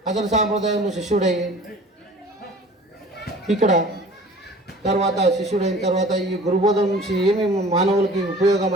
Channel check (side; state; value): both; normal; correlation 0.46